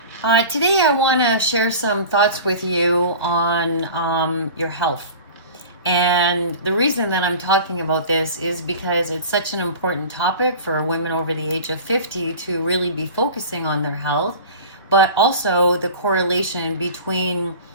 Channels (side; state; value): both; inverted; correlation -0.37